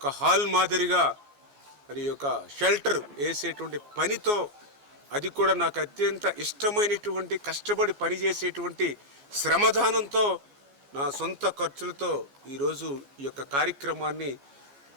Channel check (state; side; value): late; left; 14 ms